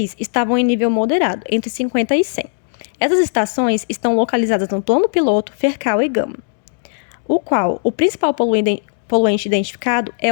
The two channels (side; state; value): right; silent; digital silence